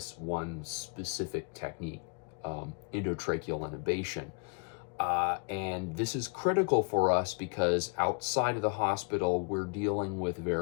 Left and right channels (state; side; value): quieter; right; 36.0 dB